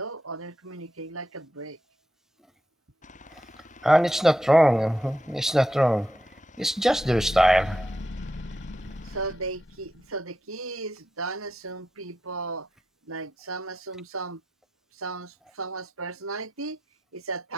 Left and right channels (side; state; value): both; normal; correlation 0.86